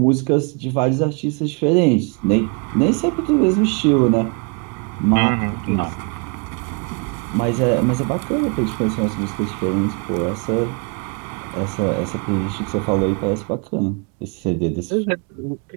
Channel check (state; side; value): quieter; left; 34.0 dB